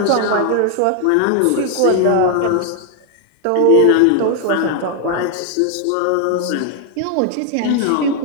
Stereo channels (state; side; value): different; both; correlation 0.00